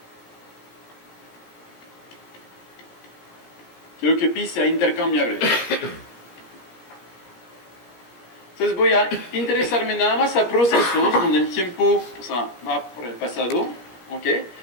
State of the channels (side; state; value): right; late; 16 ms